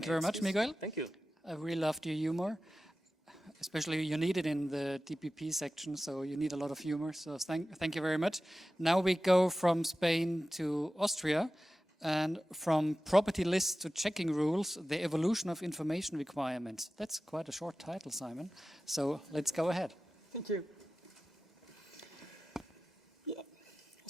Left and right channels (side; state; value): both; normal; correlation 0.94